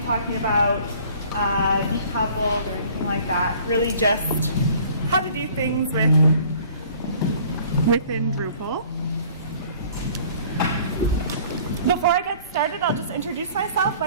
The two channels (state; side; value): inverted; both; correlation -0.53